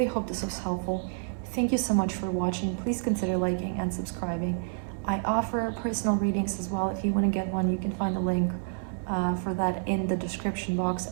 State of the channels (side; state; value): left; silent; digital silence